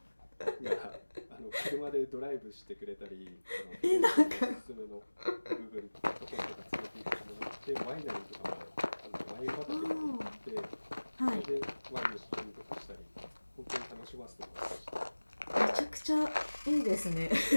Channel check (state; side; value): inverted; both; correlation -1.00